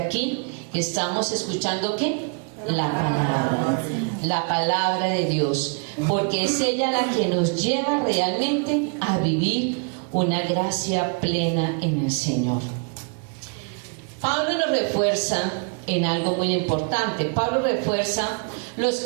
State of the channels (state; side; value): quieter; left; 38.6 dB